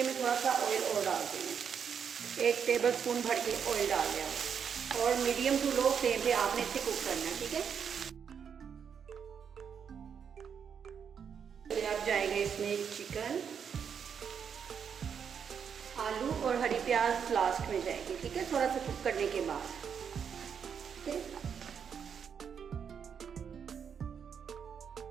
मैं थोड़ा सा ऑयल और डाल दूँगी। 1 टेबलस्पून भर के ऑयल डाल दिया और मीडियम टू लो फ्लेम पे आपने इसे कुक करना है। ठीक है, फिर अब जाएगा इसमें चिकन, आलू और हरी प्याज लास्ट में जाएगी। ठीक है, थोड़ा सा कुक करने के बाद। ठीक है,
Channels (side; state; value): left; quieter; 7.3 dB